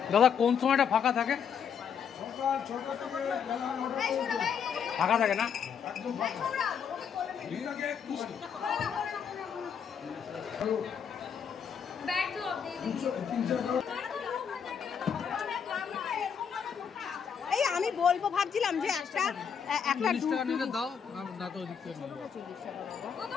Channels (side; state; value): right; quieter; 7.3 dB